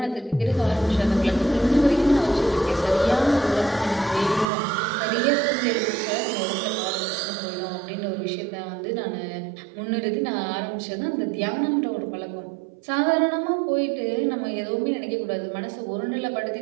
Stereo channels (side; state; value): left; drops out; at 4.5 s